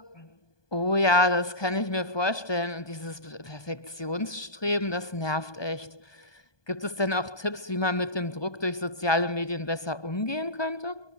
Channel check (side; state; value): right; late; 1.2 ms